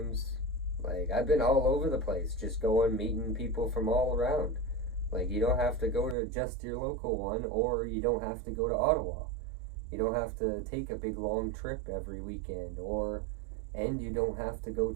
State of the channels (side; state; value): left; drops out; at 6.2 s